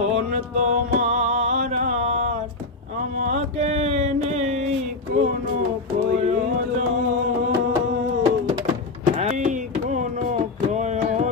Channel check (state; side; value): quieter; right; 3.5 dB